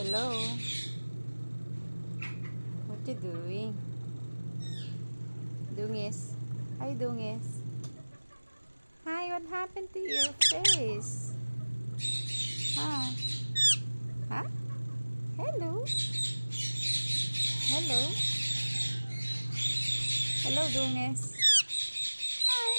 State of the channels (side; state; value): both; inverted; correlation -1.00